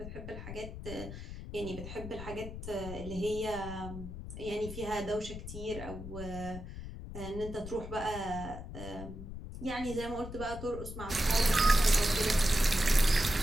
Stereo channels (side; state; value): left; noise; rumble, 9 dB below the sound